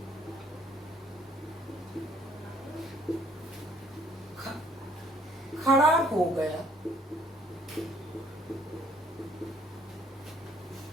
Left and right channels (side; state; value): both; normal; correlation 0.61